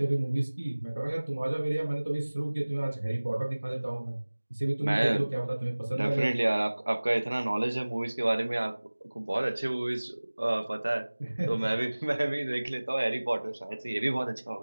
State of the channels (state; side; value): inverted; both; correlation -1.00